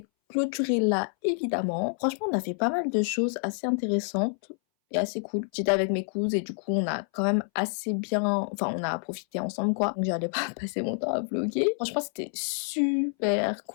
clôturer là, évidemment. Franchement, on a fait pas mal de choses assez intéressantes. est assez cool. J'étais avec mes cousines et du coup on a quand même assez bien, enfin on a profité ensemble quoi. Donc j'allais pas passer mon temps à vlogger. Franchement c'était super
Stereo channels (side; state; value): right; silent; 59 dB below the other